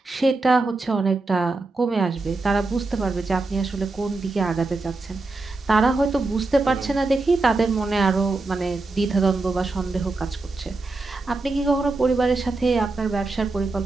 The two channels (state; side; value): quieter; left; 3.4 dB